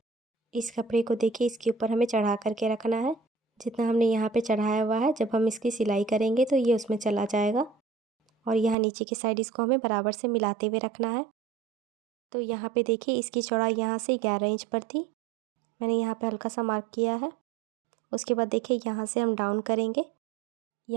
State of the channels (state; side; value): drops out; left; at 8.8 s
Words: इस कपड़े को देखिए इसके ऊपर हमें चढ़ा करके रखना है। जितना हमने यहाँ पे चढ़ाया हुआ है जब हम इसकी सिलाई करेंगे तो ये उसमें चला जाएगा। और यहाँ नीचे की साइड इसको हमें बराबर से मिलाते हुए रखना है। तो यहाँ पे देखिए इसकी चौड़ाई यहाँ से 11 इंच पर थी, मैंने यहाँ पे हल्का सा मार्क किया है। उसके बाद देखिए यहाँ से हम डाउन करेंगे,